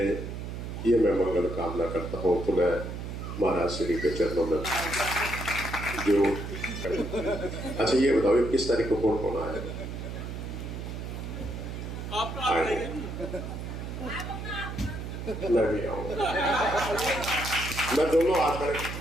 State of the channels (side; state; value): right; noise; hum, 7 dB below the sound